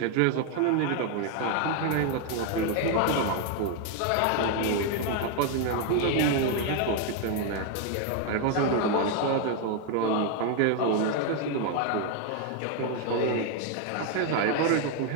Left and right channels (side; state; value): both; different; correlation 0.01